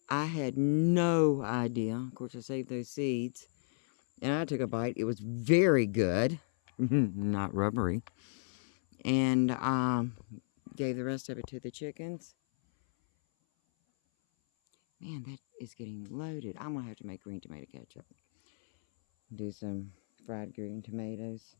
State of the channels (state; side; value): silent; right; 55 dB below the other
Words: I had no idea. Of course, I saved those seeds. And I took a bite. It was very good. Not rubbery. And gave the rest of it to the chickens. Man, that is getting loaded. I'm going to have to make green tomato ketchup. Do some fried green tomatoes.